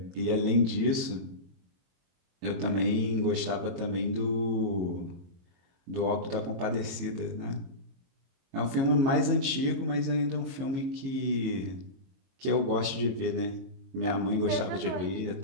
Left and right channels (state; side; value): late; left; 22 ms